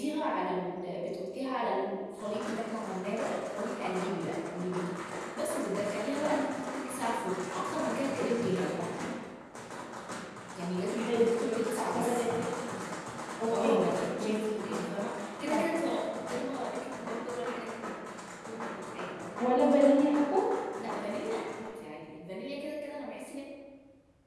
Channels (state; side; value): identical; both; correlation 1.00